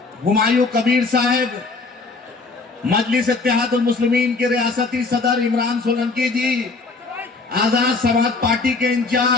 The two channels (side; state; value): right; quieter; 3.9 dB